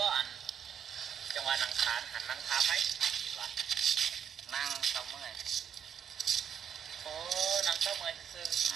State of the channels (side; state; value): left; quieter; 8.2 dB